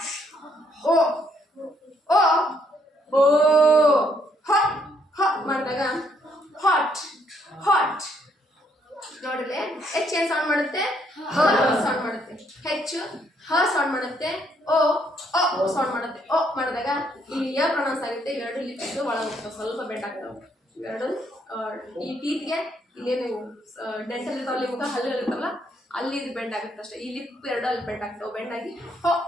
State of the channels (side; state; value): both; normal; correlation 0.70